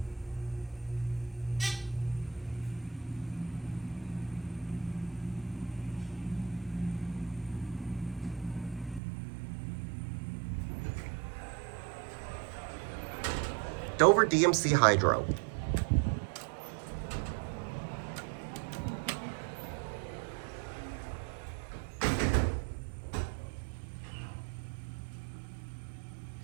Dover DMC Hydro.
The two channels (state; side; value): drops out; left; at 9.0 s